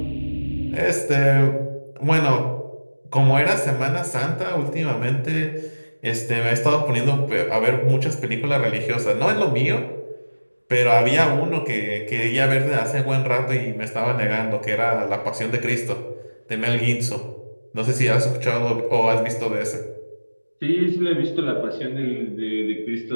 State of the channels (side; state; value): both; inverted; correlation -1.00